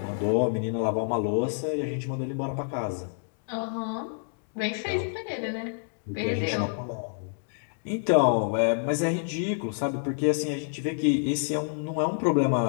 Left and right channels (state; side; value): silent; right; digital silence